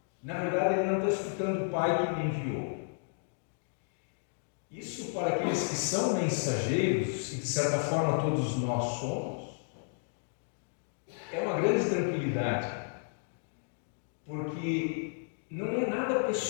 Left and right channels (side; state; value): right; silent; digital silence